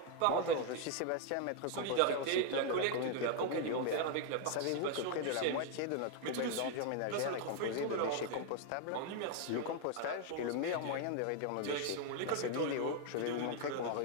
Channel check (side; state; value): both; different; correlation 0.00